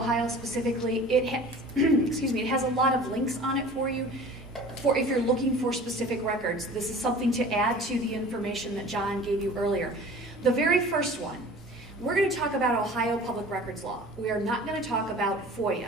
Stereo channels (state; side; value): normal; both; correlation 0.43